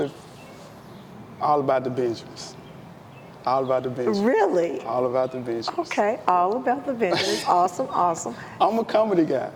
About the Benjamins. Really? All About the Benjamins. Okay, All About the Benjamins. Awesome. I'm a comedy guy.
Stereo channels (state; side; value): identical; both; correlation 1.00